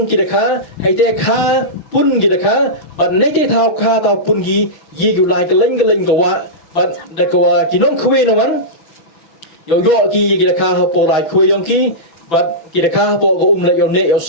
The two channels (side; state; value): right; late; 6.4 ms